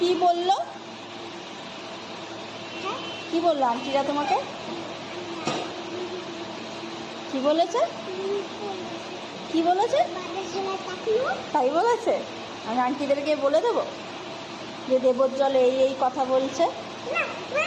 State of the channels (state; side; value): identical; both; correlation 1.00